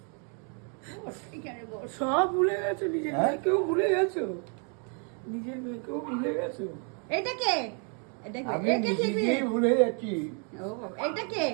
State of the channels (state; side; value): quieter; left; 39.2 dB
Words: সব ভুলে গেছো, নিজের হ্যাঁ? মেয়েকেও ভুলে গেছো, নিজের মেয়েকেও ভুলে গেছো। এটা কে? এটা কে? আমি এটা টিপি। নিজেকেই ভুলে যাচ্ছি। ও বাবা, এটা কে?